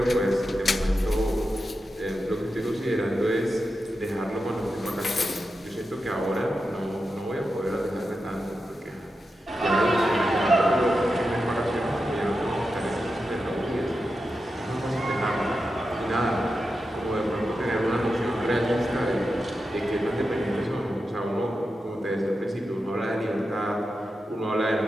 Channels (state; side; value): normal; both; correlation 0.90